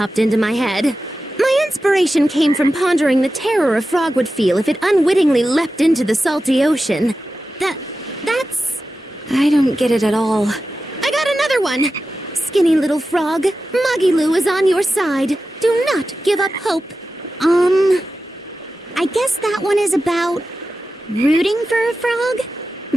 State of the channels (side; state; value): both; normal; correlation 0.93